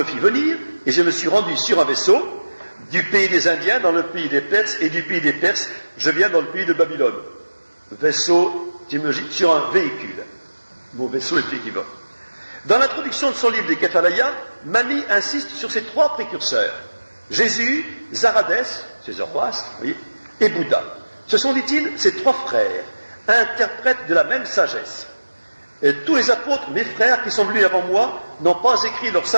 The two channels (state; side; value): inverted; both; correlation -1.00